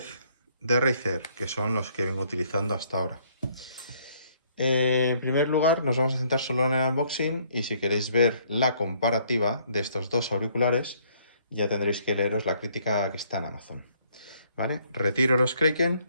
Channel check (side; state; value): both; inverted; correlation -0.65